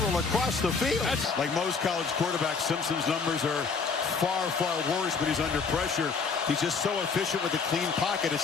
across the field. Like most college quarterbacks, Simpson's numbers are far worse, but he's under pressure. He's just so efficient with a clean pocket.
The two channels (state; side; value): quieter; right; 5.1 dB